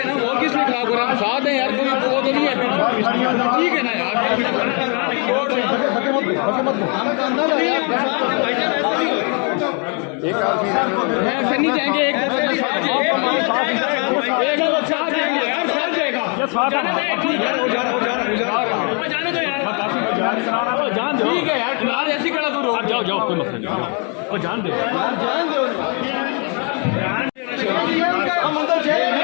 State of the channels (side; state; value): right; quieter; 36.7 dB